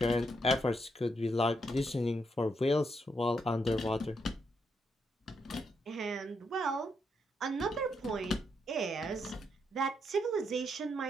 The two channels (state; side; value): normal; both; correlation 0.79